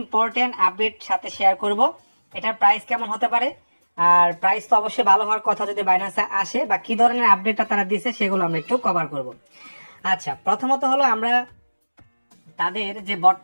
আপডেট সাথে শেয়ার করব। এটার প্রাইস কেমন হতে পারে, আর প্রাইস তো অবশ্যই ভালো হওয়ার কথা যদি বাইন্যান্সে আসে, বা কি ধরনের আপডেটটা তারা দিছে সেগুলো আমরা একটু কভার করব। আচ্ছা, প্রথমত হলো আমরা তাদের যে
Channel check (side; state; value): both; inverted; correlation -1.00